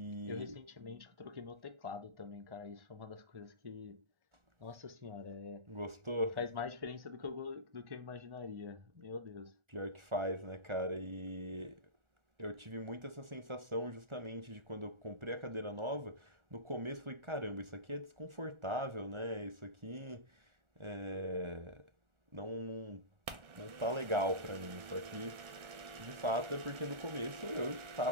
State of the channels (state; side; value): late; left; 1.4 ms